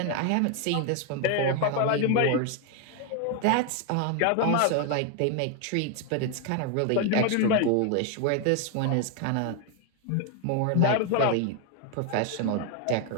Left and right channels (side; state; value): both; different; correlation 0.01